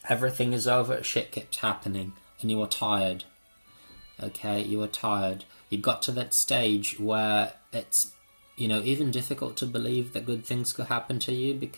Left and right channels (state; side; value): inverted; both; correlation -1.00